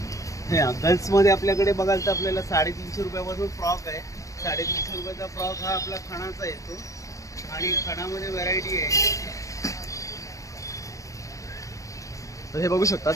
हे गर्ल्समध्ये आपल्याकडे बघाल तर आपल्याला 350 रुपयापासून फ्रॉक आहे. 350 रुपयाचा फ्रॉक हा आपला खणाचा येतो आणि खणामध्ये व्हरायटी आहे. तर हे बघू शकता,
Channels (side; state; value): right; late; 0.16 ms